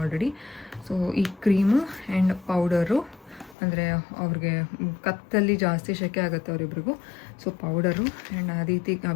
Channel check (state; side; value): drops out; right; at 3.6 s